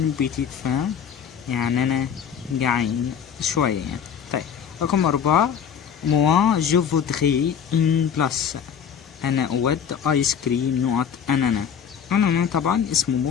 بيتيت فان، يعني انا جعان شوية يعني. طيب رقم 4 موا جو فودغي ان بلاس، انا اود ايس كريم نقط انانا. انانا طبعا اسم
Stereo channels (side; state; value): right; quieter; 7.8 dB